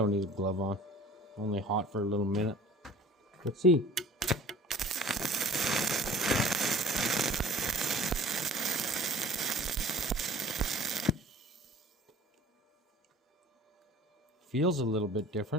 need a glove on. Only hot for a little minute. Let's see. Feels a little bit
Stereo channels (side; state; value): both; normal; correlation 0.46